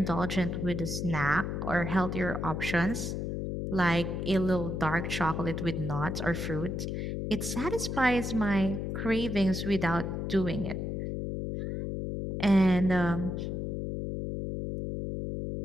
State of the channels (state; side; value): noise; left; hum, 3 dB below the sound